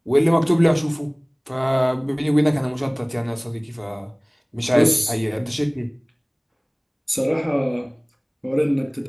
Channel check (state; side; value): identical; both; correlation 1.00